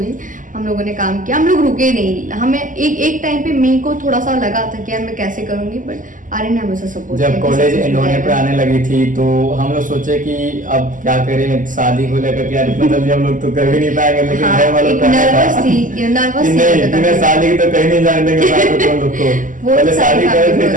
हम लोगों ने काम किया, हम लोग रुके नहीं। हमें एक टाइम पे मेरे को थोड़ा सा लगा था कि यार मैं कैसे करूँगी, बट आर्यन ने हमेशा सपोर्ट किया। जब कॉलेज एंड होने पे आने लगी थी तो हम लोग सोचे कि अब क्या करें, शादी को लेकर के यार इतना जल्दी हम लोग तो कर भी नहीं पाएंगे, लेकिन घर वालों का नर्वस थी कि नहीं तुम्हें शादी की तो कहीं नहीं जाने देंगे साथ में तुम लोग को, पहले शादी करो फिर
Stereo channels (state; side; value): late; left; 0.38 ms